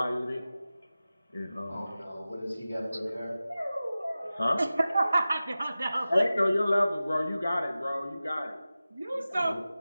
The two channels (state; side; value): inverted; both; correlation -0.95